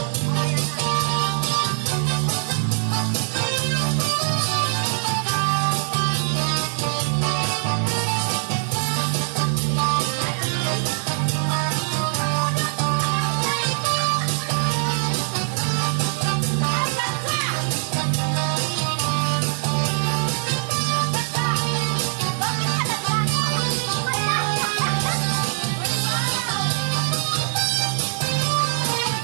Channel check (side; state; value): left; silent; digital silence